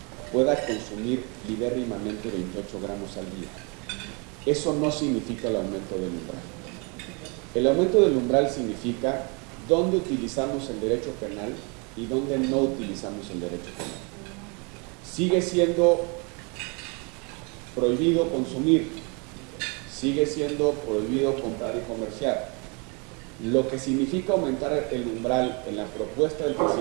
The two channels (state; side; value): quieter; left; 32.4 dB